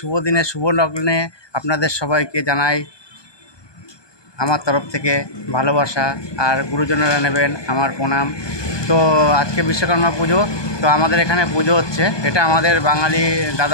দিনে শুভ লগ্নে আপনাদের সবাইকে জানাই আমার তরফ থেকে ভালোবাসা, আর গুরুজনেরা নেবেন আমার প্রণাম। তো আজকে বিশ্বকর্মা পুজো, তো আমাদের এখানে পুজো হচ্ছে। এটা আমাদের বাঙালি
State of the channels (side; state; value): right; late; 1.2 ms